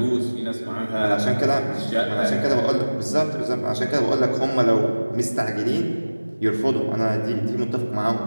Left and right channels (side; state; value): both; inverted; correlation -1.00